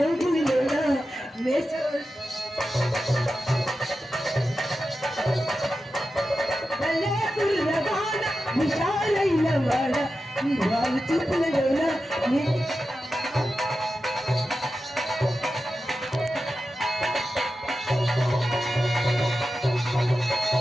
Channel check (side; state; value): both; normal; correlation 0.91